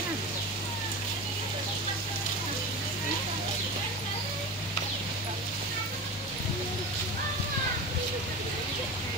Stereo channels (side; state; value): both; normal; correlation 0.30